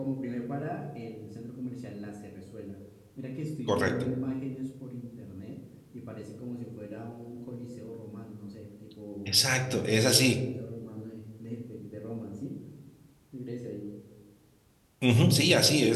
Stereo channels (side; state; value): both; identical; correlation 1.00